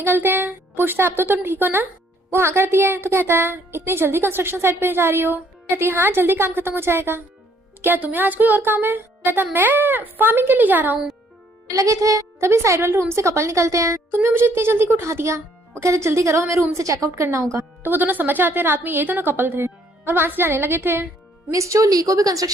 हैं। पूछता है अब तो तुम ठीक हो ना। वो हाँ करती है तो कहता है इतनी जल्दी कंस्ट्रक्शन साइट पे जा रही हो। कहती है हाँ जल्दी काम खत्म हो जाएगा, क्या तुम्हें आज कोई और काम है। कहता मैं फार्मिंग के लिए जा रहा हूँ। लगे थे तभी साइड वाले रूम से कपल निकलते हैं, तुमने मुझे इतनी जल्दी को उठा दिया। वो कहते जल्दी करो हमें रूम से चेकआउट करना होगा। तो वो दोनों समझ जाते हैं रात में ये दोनों कपल थे और वहां से जाने लगे थे। मिस चो ली को भी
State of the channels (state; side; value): normal; both; correlation 0.65